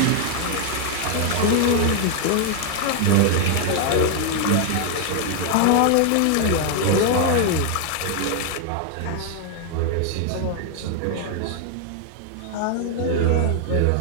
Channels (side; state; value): both; different; correlation 0.00